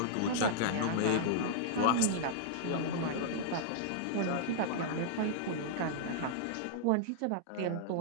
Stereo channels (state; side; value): different; both; correlation -0.01